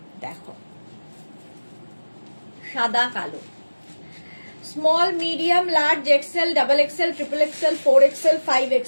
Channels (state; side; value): inverted; both; correlation -1.00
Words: দেখো, সাদা কালো, small, medium, large, XL, double XL, triple XL, 4XL,